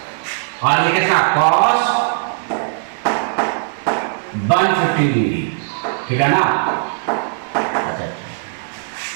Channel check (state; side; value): silent; left; digital silence